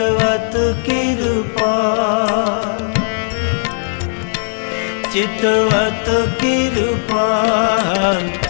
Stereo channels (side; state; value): right; silent; digital silence